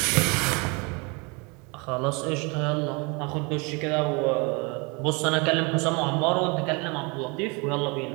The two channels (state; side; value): quieter; left; 29.6 dB